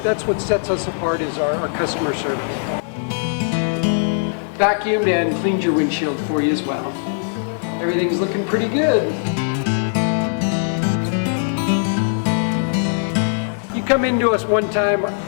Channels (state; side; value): silent; right; 65 dB below the other